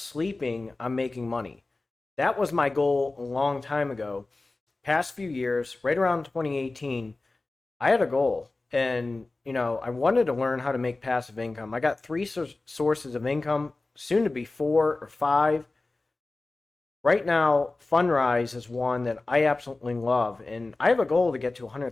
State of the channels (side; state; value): right; quieter; 3.2 dB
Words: I'm making money. That was my goal a long time ago. Past few years, right around 2018, I had a goal. And, I wanted to learn how to make passive income. I got three sources of income, soon to be 4 or 5. Right now, Fundrise is one that I absolutely love. And I have a goal to get to